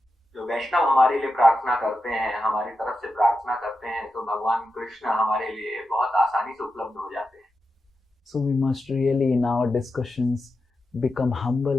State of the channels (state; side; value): normal; both; correlation 0.89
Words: जो वैष्णव हमारे लिए प्रार्थना करते हैं, हमारी तरफ से प्रार्थना करते हैं, तो भगवान कृष्ण हमारे लिए बहुत आसानी से उपलब्ध हो जाते हैं। So we must really in our discussions become humble